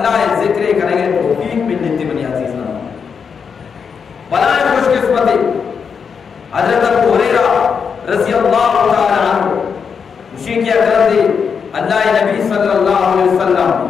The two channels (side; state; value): right; quieter; 6.3 dB